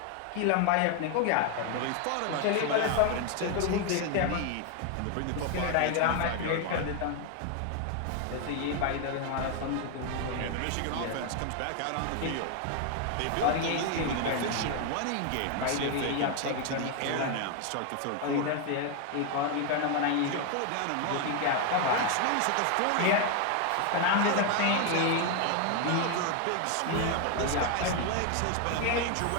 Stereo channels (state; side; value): different; both; correlation 0.01